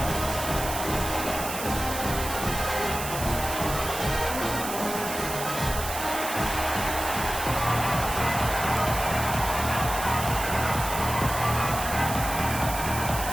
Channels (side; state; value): right; noise; hiss, 7 dB below the sound